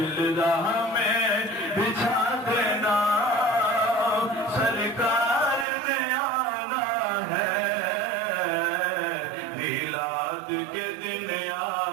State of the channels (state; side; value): drops out; left; at 5.7 s